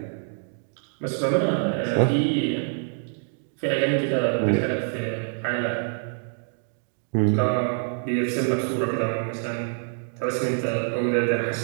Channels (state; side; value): silent; left; 61 dB below the other